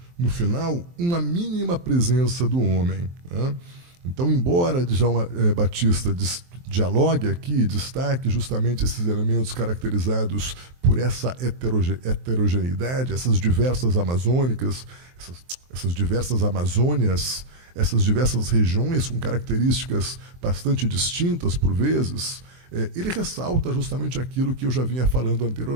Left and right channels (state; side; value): late; left; 23 ms